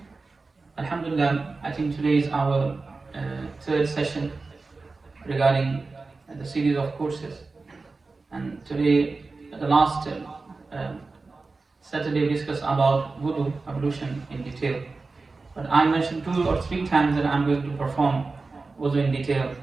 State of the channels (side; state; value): left; quieter; 3.9 dB